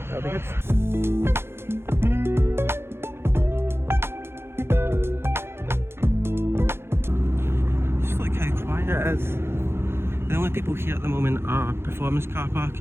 that'll be good. Just look how quiet it is. The only people here at the moment are performance car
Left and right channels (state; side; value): late; left; 0.12 ms